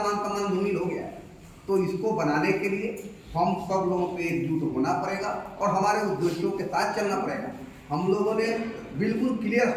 सम्मान धूमिल हो गया है। तो इसको बनाने के लिए हम सब लोगों को एकजुट होना पड़ेगा और हमारे उद्देश्यों के साथ चलना पड़ेगा। हम लोगों ने बिल्कुल क्लियर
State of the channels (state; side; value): identical; both; correlation 1.00